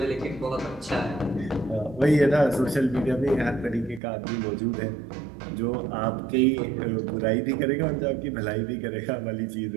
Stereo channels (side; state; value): left; drops out; at 4.0 s